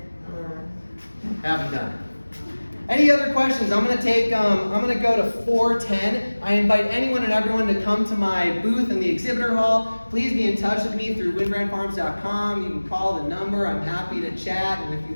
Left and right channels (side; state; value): both; inverted; correlation -1.00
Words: Haven't done it. Any other questions? I'm gonna go to 4:10. I invite anyone and everyone to come to my booth in the exhibitor hall. Please be in touch with me through wyndbrantfarms.com. You can call the number. I'm happy to chat. And if you